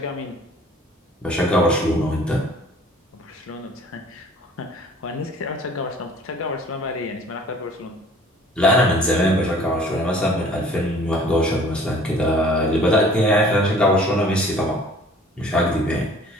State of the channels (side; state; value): both; normal; correlation 0.51